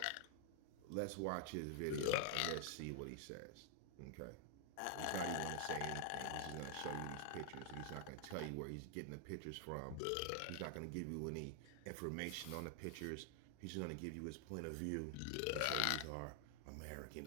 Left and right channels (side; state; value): both; different; correlation 0.00